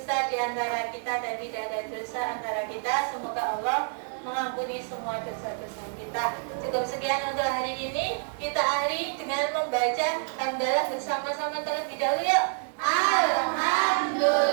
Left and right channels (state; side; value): silent; left; 59 dB below the other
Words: di antara kita dan tidak ada dosa antara kita. Semoga Allah mengampuni semua dosa-dosa kita. Cukup sekian untuk hari ini. Kita akhiri dengan membaca hamdalah bersama-sama terlebih dahulu yuk.